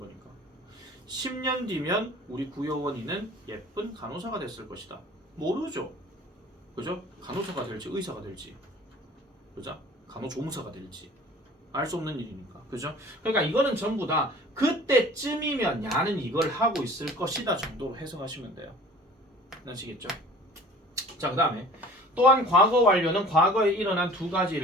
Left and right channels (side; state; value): both; normal; correlation 0.46